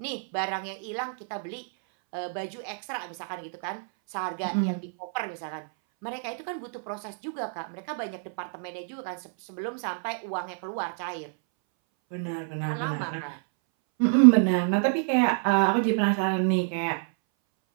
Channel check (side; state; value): left; silent; 59 dB below the other